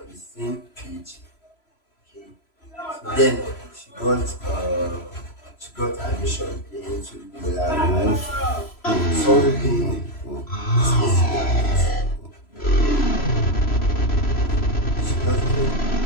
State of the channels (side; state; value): right; late; 3.0 ms